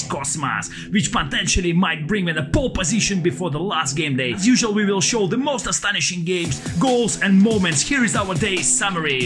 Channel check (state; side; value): identical; both; correlation 1.00